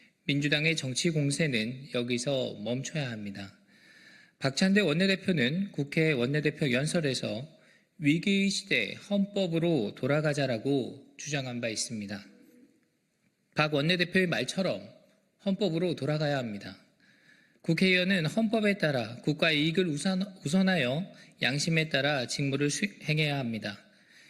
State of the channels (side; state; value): both; identical; correlation 1.00